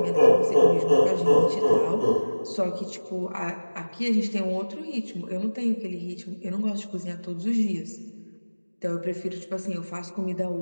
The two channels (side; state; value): both; inverted; correlation -1.00